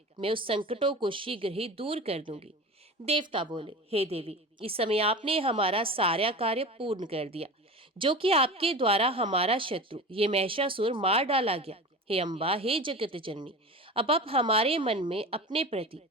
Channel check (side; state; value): both; normal; correlation 0.32